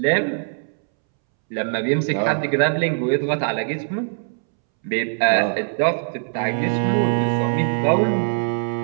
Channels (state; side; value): silent; left; 65 dB below the other